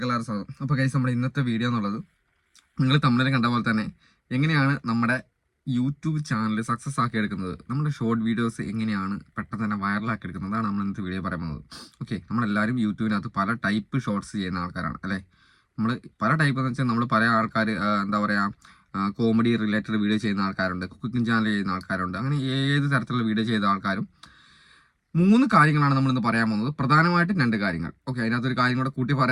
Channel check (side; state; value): both; identical; correlation 1.00